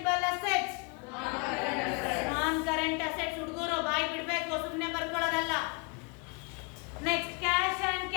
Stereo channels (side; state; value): right; quieter; 31.7 dB